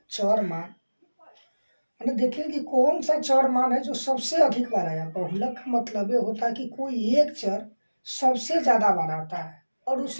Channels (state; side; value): inverted; both; correlation -1.00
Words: चर मान। मैंने देखिए कि कौन सा चर मान है जो सबसे अधिक बार आया। बहुलक का मतलब ये होता है कि कोई एक चर सबसे ज़्यादा बार आता है और